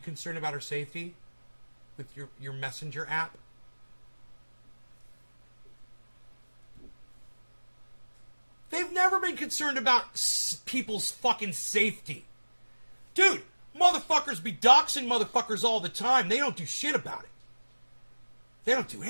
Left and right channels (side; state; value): both; inverted; correlation -1.00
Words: about her safety with your Messenger app? They've never been concerned about people's fucking safety. Dude, motherfuckers be doxing motherfuckers all the time. They don't do shit about it. They don't do